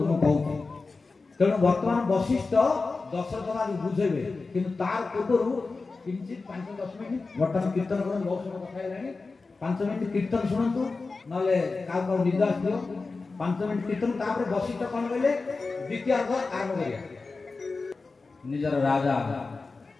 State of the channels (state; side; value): quieter; right; 4.0 dB